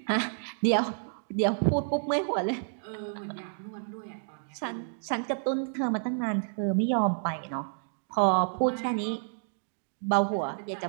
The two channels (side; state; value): left; silent; digital silence